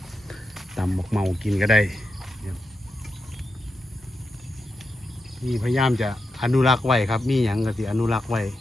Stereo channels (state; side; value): normal; both; correlation 0.87